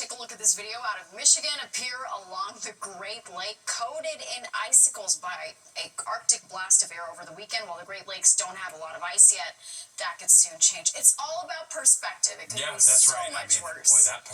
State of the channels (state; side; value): identical; both; correlation 1.00